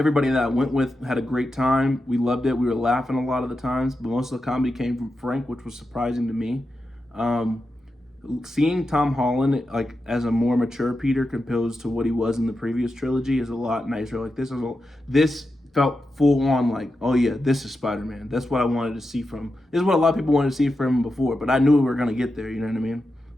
that I went with had a great time. We loved it. We were laughing a lot of the times, but most of the comedy came from Frank, which was surprising to me. Seeing Tom Holland like as a more mature Peter compared to what he was in the previous trilogy is a lot nicer. Like this felt full on like, oh yeah, this is Spider-Man. That's what I wanted to see from. This is what a lot of people wanted to see from him before, but I knew we were gonna get there. You know what I mean?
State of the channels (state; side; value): normal; both; correlation 0.89